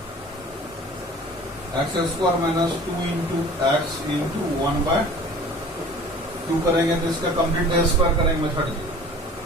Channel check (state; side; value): normal; both; correlation 0.45